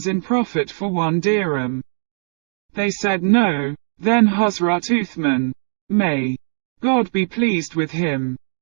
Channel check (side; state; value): left; silent; 66 dB below the other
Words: in profit for 1 dirham. They said no. Then Hazrat Uthman, may God be pleased with him,